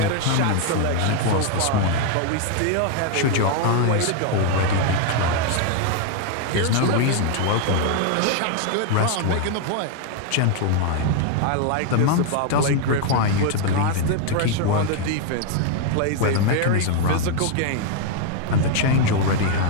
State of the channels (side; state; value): both; different; correlation 0.01